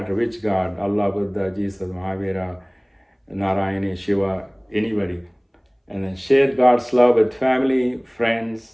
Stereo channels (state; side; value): identical; both; correlation 1.00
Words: which God, Allah, Buddha, Jesus, Mahavira, Narayana, Shiva, anybody. And then share God's love with family,